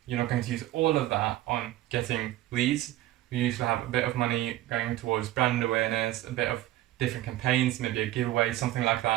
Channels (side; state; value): left; quieter; 15.3 dB